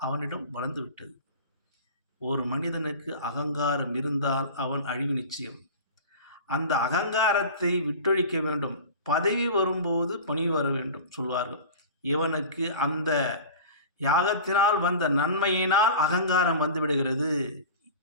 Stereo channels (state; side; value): inverted; both; correlation -0.35